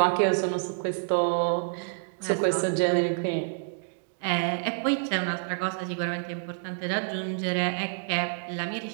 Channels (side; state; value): left; silent; digital silence